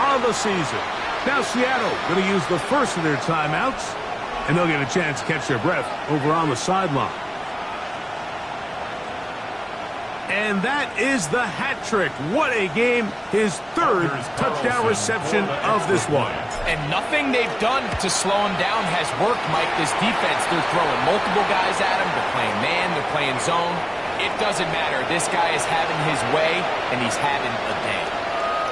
the season. Now Seattle going to use the first of their timeouts, and they'll get a chance to catch their breath over on the sideline. And that is the hat trick. What a game. His 3rd touchdown reception of this one. And nothing they've done to slow him down has worked, Mike. This defense, they're throwing multiple guys at him. They're playing man, they're playing zone. It doesn't matter. This guy is having his way, and he's having a day.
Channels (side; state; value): both; identical; correlation 1.00